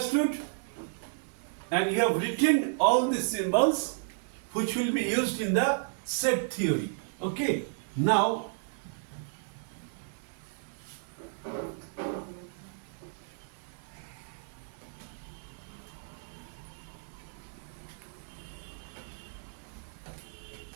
and you have written all the symbols which will be used in the set theory. Okay? Now,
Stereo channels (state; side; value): silent; left; 56 dB below the other